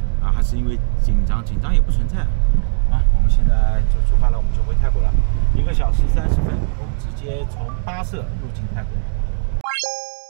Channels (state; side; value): silent; left; digital silence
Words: 啊，还是因为紧张也不存在。啊，我们现在就出发了，我们就回泰国了。1个小时30分，我们直接从巴舍入境泰国。